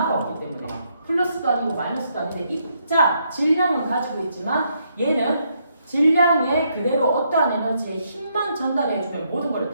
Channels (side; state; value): both; inverted; correlation -0.75